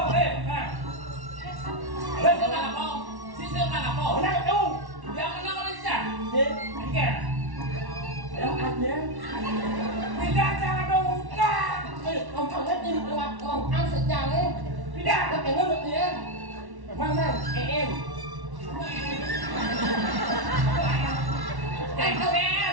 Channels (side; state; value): left; late; 1.1 ms